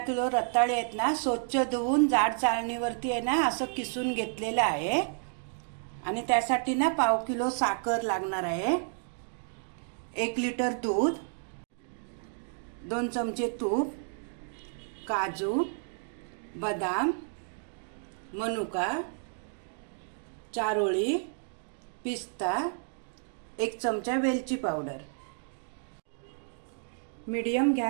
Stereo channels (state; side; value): silent; left; 57 dB below the other